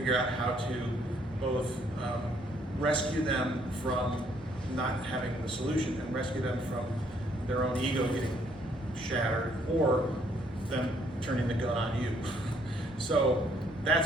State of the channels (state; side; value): normal; both; correlation 0.66